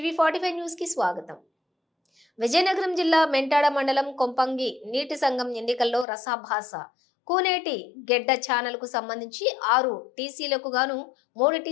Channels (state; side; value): drops out; right; at 6.1 s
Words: 45 news కి స్వాగతం. విజయనగరం జిల్లా మెంటాడ మండలం కొంపంగి నీటి సంఘం ఎన్నికల్లో రసాభాస. కూనేటి గెడ్డ ఛానల్ కు సంబంధించి 6 టీసీలకు గాను 3